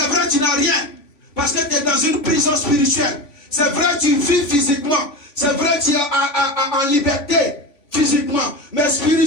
vrai, tu n'as rien. Parce que tu es dans une prison spirituelle. C'est vrai, tu vis physiquement. C'est vrai, tu es en liberté physiquement. Mais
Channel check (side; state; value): right; late; 3.5 ms